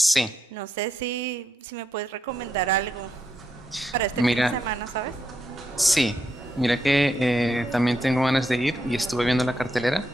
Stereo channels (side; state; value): both; normal; correlation 0.81